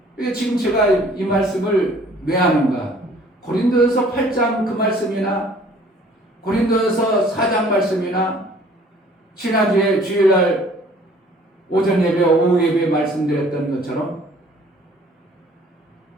지금 제가 이 말씀을 왜 하는가? 고린도전서 8장 그 말씀이나 고린도전서 4장 말씀이나 지난주에 주일날 오전 예배, 오후 예배 말씀드렸던 것처럼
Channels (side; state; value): both; normal; correlation 0.55